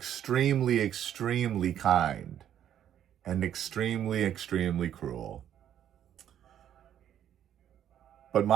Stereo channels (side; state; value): left; quieter; 10.3 dB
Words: extremely kind and extremely, extremely cruel. But